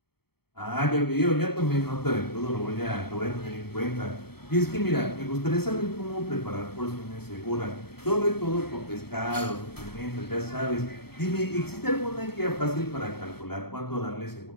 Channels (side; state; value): right; late; 0.96 ms